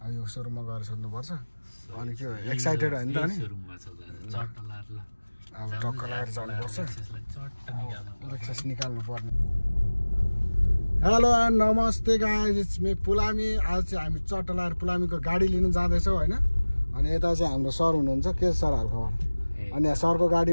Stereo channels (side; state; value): both; inverted; correlation -1.00